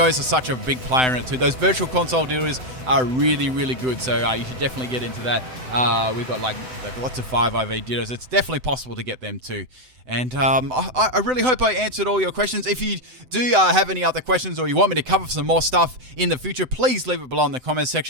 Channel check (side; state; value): left; late; 7.8 ms